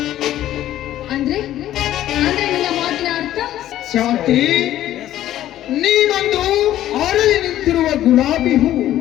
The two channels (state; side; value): quieter; right; 13.0 dB